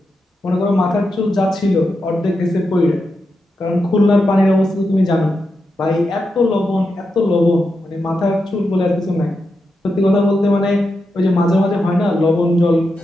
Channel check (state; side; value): normal; both; correlation 0.87